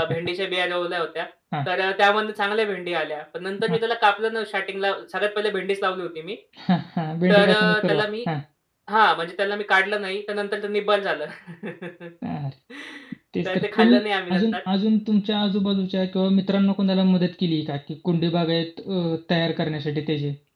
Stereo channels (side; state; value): both; identical; correlation 1.00